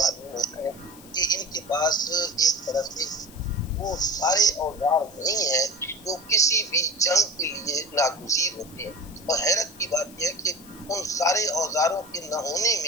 ہوتا ہے کہ ان کے پاس ایک طرح سے وہ سارے اوزار نہیں ہیں جو کسی بھی جنگ کے لیے ناگزیر ہوتے ہیں. اور حیرت کی بات یہ ہے کہ ان سارے اوزاروں کے نہ ہونے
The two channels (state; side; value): noise; left; hiss, 21 dB below the sound